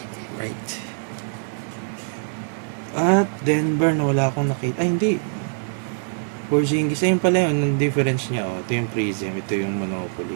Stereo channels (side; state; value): left; silent; digital silence